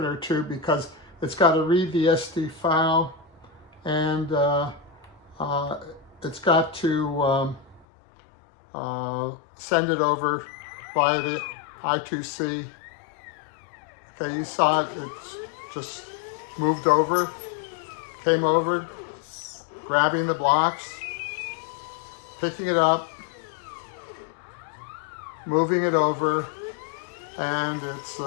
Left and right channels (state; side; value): drops out; right; at 7.9 s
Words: or two because it's got to read the SD file, and it's got to send it over via the I2C. Okay, you saw it, it's just moved over, came over, grabbing the blocks, picking it up, moving it over, and it's